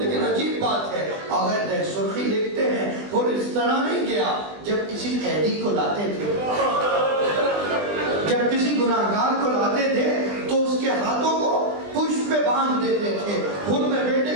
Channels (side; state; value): left; late; 20 ms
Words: عجیب بات ہے، اگر دہ سرخی لکھتے ہیں اور اس طرح نہیں گیا، جب کسی قیدی کو لاتے تھے، جب کسی گناہگار کو لاتے تھے تو اس کے ہاتھوں کو پشت پہ باندھ دیتے تھے۔ خود نے بیٹے